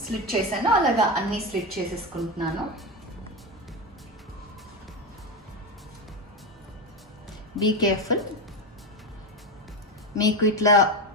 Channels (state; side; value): normal; both; correlation 0.16